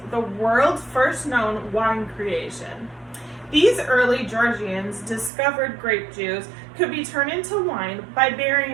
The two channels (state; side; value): drops out; left; at 5.3 s